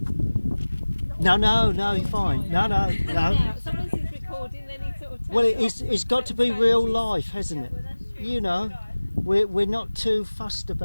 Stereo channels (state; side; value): inverted; both; correlation -1.00